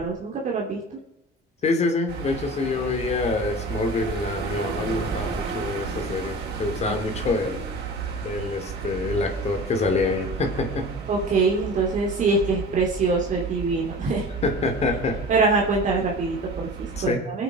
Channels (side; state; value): both; normal; correlation 0.37